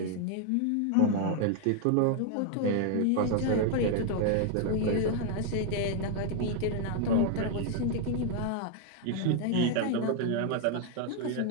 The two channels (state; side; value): different; both; correlation 0.00